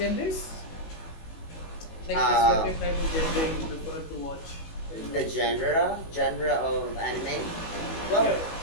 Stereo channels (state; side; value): late; right; 18 ms